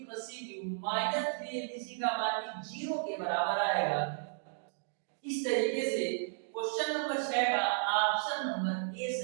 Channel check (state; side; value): silent; left; digital silence